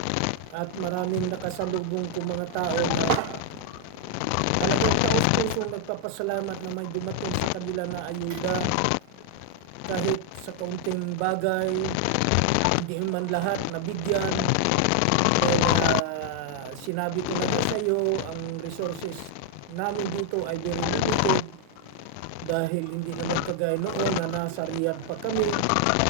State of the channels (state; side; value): different; both; correlation 0.00